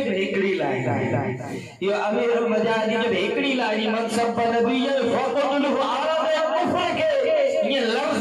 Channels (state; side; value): identical; both; correlation 1.00